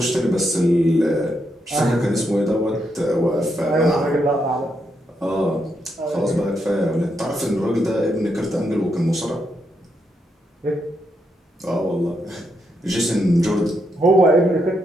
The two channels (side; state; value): both; normal; correlation 0.80